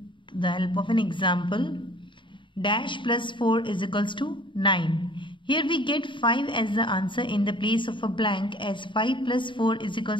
the help of an example. Dash plus 4 is equals to 9. Here we get 5 as the answer in the place of a blank, as 5 plus 4 is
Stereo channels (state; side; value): late; right; 0.24 ms